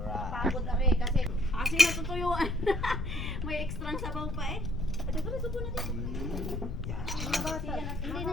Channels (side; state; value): left; noise; rumble, 4 dB below the sound